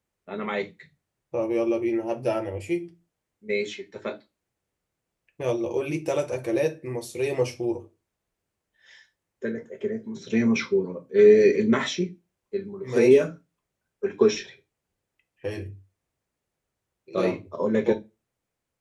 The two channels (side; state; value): both; identical; correlation 1.00